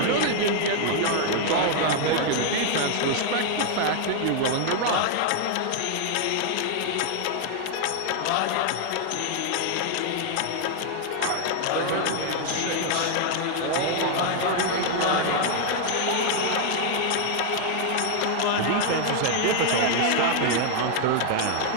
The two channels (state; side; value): different; both; correlation 0.00